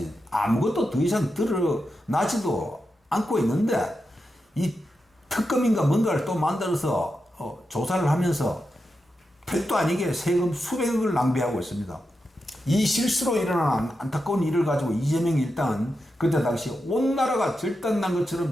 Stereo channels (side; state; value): both; normal; correlation 0.88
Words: 아무것도 더 이상 드러나지도 않고 있는데 이 특검인가 뭔가를 또 만들어서 조사를 하면서 택도 아니게 세금 수백억을 낭비하고 있습니다. 이 실수로 일어난 안타까운 일을 가지고 이재명이 일단 그때 당시 온 나라가 절단난